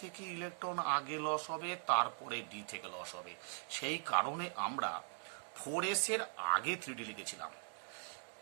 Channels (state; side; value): silent; left; 50 dB below the other